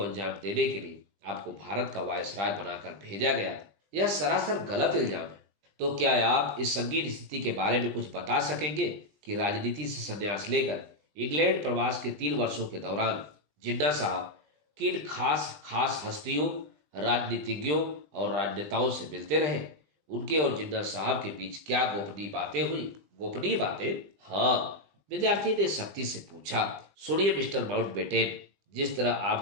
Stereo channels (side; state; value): left; late; 20 ms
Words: अंजाम देने के लिए आपको भारत का वायसराय बनाकर भेजा गया था। यह सरासर गलत इल्जाम है। तो क्या आप इस संगीन स्थिति के बारे में कुछ बता सकेंगे कि राजनीति से संन्यास लेकर इंग्लैंड प्रवास के 3 वर्षों के दौरान जिन्ना साहब किन खास खास हस्तियों, राजनीतिज्ञों और राजनेताओं से मिलते रहे? उनके और जिन्ना साहब के बीच क्या गोपनीय बातें हुई? गोपनीय बातें? हाँ, विद्यार्थी ने सख्ती से पूछा। सुनिए मिस्टर माउंटबेटन, जिस तरह